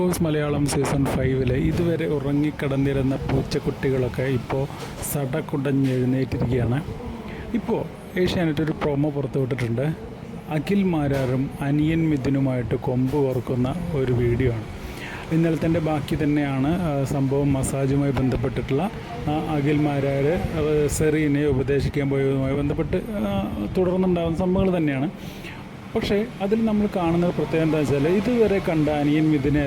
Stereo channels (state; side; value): identical; both; correlation 1.00